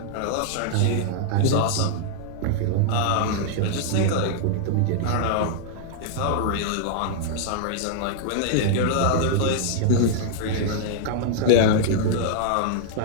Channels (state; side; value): different; both; correlation -0.01